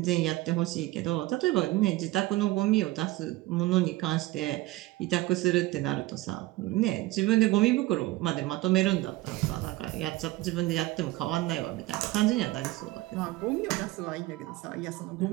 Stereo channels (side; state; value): left; quieter; 18.5 dB